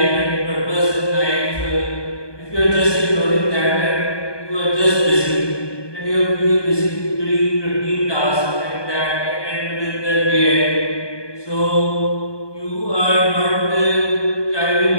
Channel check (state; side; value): late; right; 1.2 ms